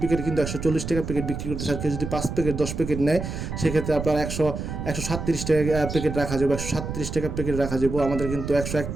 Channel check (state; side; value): noise; right; rumble, 6 dB below the sound